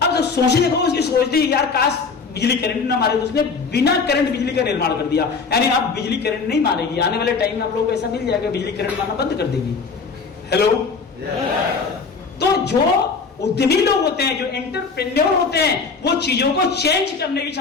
अब जब सोचे देखो, उसकी सोच थी यार काश बिजली करंट ना मारे, तो उसने बिना करंट बिजली का निर्माण कर दिया। यानी अब बिजली करंट नहीं मारेगी, आने वाले टाइम में आप लोगों को ऐसा मिल जाएगा, बिजली करंट मारना बंद कर देगी। हेलो, तो जो उद्यमी लोग होते हैं, जो एंटरप्रेन्योर होते हैं, वो चीजों को चेंज करने की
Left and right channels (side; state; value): right; quieter; 4.9 dB